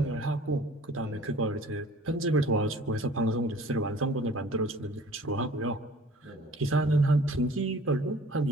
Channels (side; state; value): both; normal; correlation 0.49